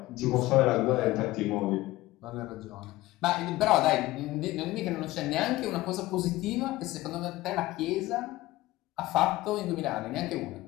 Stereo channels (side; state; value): right; quieter; 18.0 dB